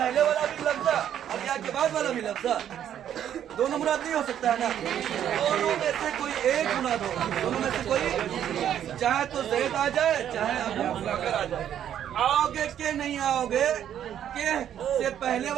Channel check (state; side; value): quieter; left; 10.1 dB